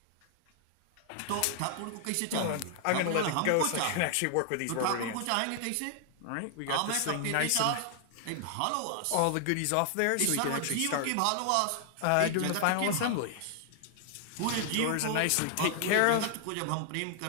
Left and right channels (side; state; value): both; different; correlation 0.00